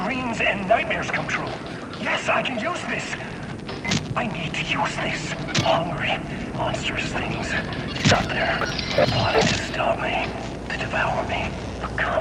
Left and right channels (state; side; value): identical; both; correlation 1.00